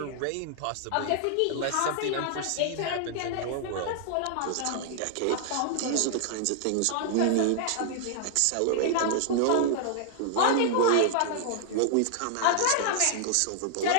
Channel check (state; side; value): different; both; correlation -0.01